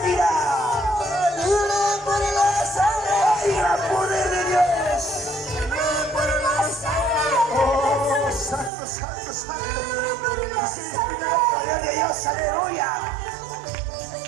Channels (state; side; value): drops out; left; at 8.7 s